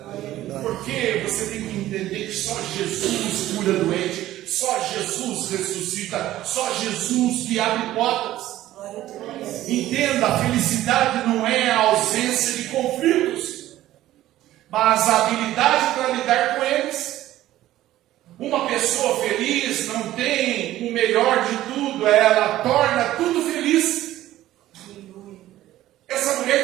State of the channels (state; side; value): quieter; left; 14.4 dB